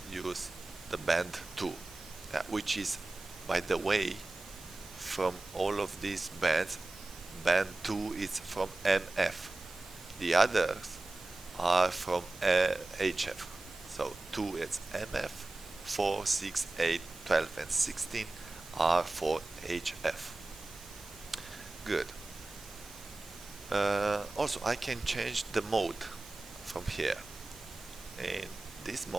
use the band 2, which is, by the way, from all of these bands, band 2 is from MF. The others are from HF. So 2 is MF, 4, 6, 8, 12, and 16 are for HF. Good. Also, I can change the mode from here. In this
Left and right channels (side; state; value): left; quieter; 3.0 dB